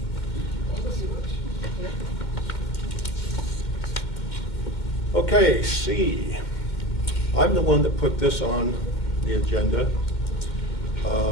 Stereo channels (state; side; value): late; right; 2.1 ms